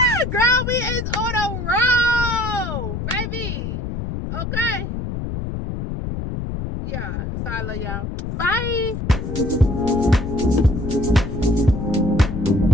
Girl, we is on the road, baby. Okay. Yeah. So I love y'all. Bye.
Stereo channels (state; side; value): noise; left; rumble, 4 dB below the sound